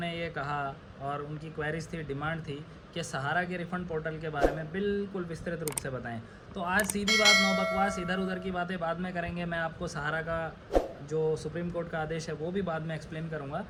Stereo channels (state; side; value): identical; both; correlation 1.00